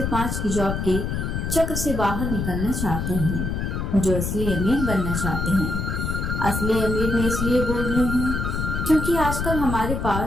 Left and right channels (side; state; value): left; noise; rumble, 2 dB below the sound